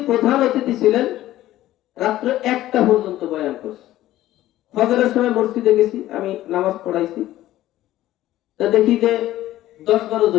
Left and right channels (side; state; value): right; quieter; 14.6 dB